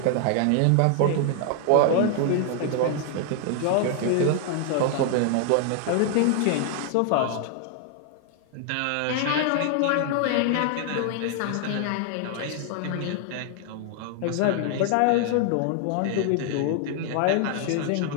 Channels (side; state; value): both; different; correlation 0.00